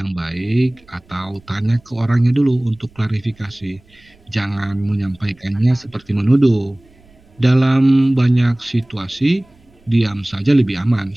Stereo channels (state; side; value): noise; right; rumble, 30 dB below the sound